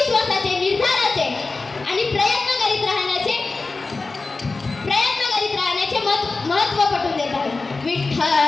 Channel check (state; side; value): quieter; right; 3.7 dB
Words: निर्धाराचे आणि प्रयत्न करीत राहण्याचे महत्त्व पटवून देत आहेत.